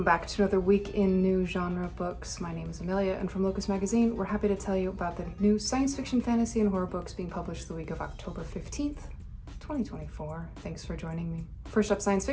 back to another week in new genre books. My name is Amelia, and from Locus Magazine, we're happy to tell you about the new science fiction, fantasy, and horror books being published the week of October 15th, 2024. Thanks for joining me. First up, science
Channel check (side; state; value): both; identical; correlation 1.00